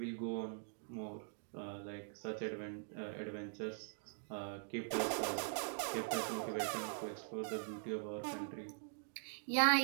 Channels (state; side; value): silent; left; digital silence